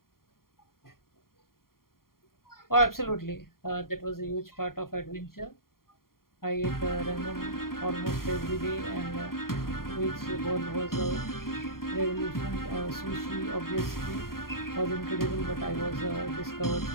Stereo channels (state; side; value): late; right; 0.92 ms